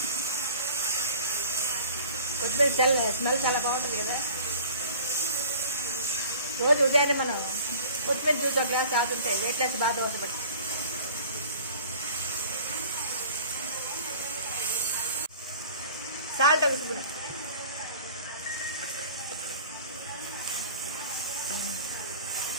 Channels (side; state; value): both; inverted; correlation -0.45